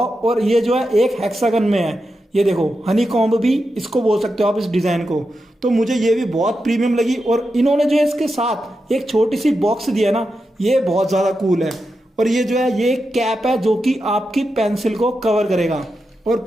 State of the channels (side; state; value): both; normal; correlation 0.88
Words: ये जो है एक हेक्सागन में है, ये देखो हनी कॉम्ब भी इसको बोल सकते हो आप इस डिजाइन को। तो मुझे ये भी बहुत प्रीमियम लगी। और इन्होंने जो है इसके साथ एक छोटी सी बॉक्स दिया ना, ये बहुत ज्यादा कूल है। और ये जो है ये कैप है जो कि आपकी पेंसिल को कवर करेगा। और